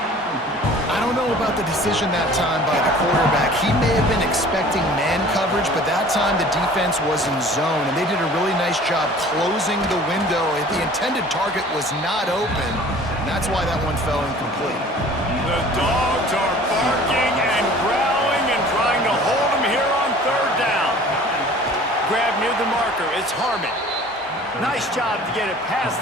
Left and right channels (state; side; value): normal; both; correlation 0.47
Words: I don't know about the decision that time by the quarterback. He may have been expecting man coverage, but that time the defense was in zone, and they did a really nice job closing the window. The intended target was not open, and that's why that one fell incomplete. The Dogs are barking and growling and trying to hold him here on 3rd down. Grab near the marker. It's Harmon. Nice job to get it